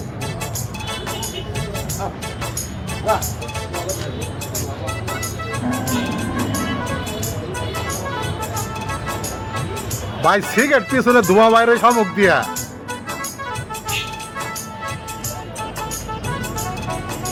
ভাই সিগারেট পিছনে ধোঁয়া বাইরে শামুক দিয়া।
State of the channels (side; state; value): both; identical; correlation 1.00